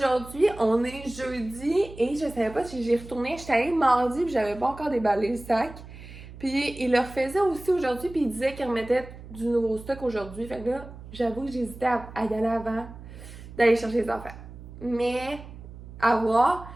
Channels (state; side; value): noise; right; hum, 15 dB below the sound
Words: on est jeudi et je savais pas si j'ai retourné. J'étais allée mardi puis j'avais pas encore déballé le sac. Puis il le refaisait aussi aujourd'hui puis il disait qu'il remettait du nouveau stock aujourd'hui. Fait que là, j'avoue que j'hésitais à y aller avant d'aller chercher les affaires. Mais à voir.